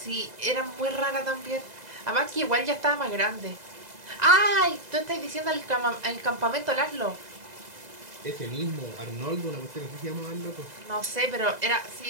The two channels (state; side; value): late; left; 2.0 ms